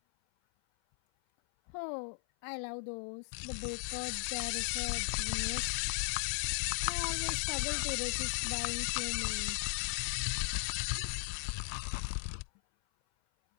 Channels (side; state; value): right; silent; 53 dB below the other